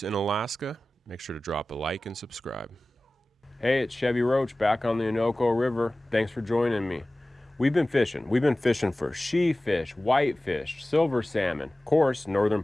in Alaska. Make sure to drop a like and subscribe. Hey, it's Chevy Roach back on the Innoko River. Thanks for joining me. We've been fishing. We've been fishing for sheefish, whitefish, silver salmon, of course, northern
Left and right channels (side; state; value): both; normal; correlation 0.97